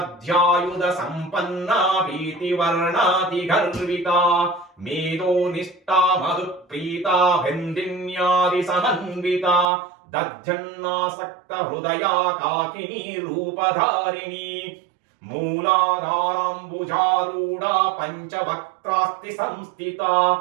సంపన్నా భీతివర్ణాతి గర్వితా మేధో నిష్టా మధుప్రీతా భండిన్యాది సమన్వితా దధ్యన్నాసక్త హృదయా కాకినీ రూపధారిణి మూలాధారాంబుజారూఢా పంచవక్త్రాస్తి సంస్థిత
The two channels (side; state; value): left; drops out; at 9.7 s